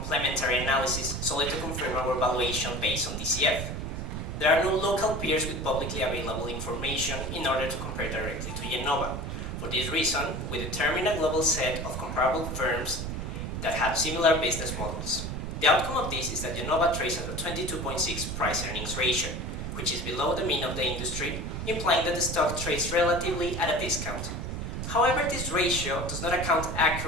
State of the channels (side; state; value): right; noise; rumble, 5 dB below the sound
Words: analysis solely to confirm our valuation based on DCF. There are no local peers with publicly available information in order to compare directly to Yenova. For this reason, we determined a global set of comparable firms that have similar business models. The outcome of this is that Yenova trades at a 22.6 price-earnings ratio, which is below the mean of the industry, implying that the stock trades relatively at a discount. However, this ratio does not account